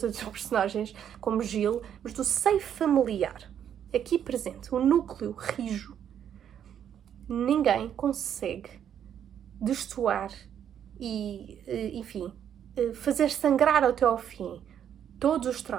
personagens, como Gil, mas do seio familiar. Aqui presente, o núcleo rijo. Ninguém consegue destoar e, enfim, fazer sangrar até ao fim todos os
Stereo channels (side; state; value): left; quieter; 9.3 dB